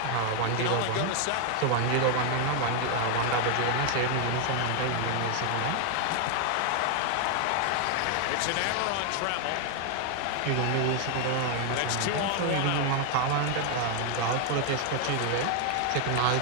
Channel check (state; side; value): different; both; correlation 0.00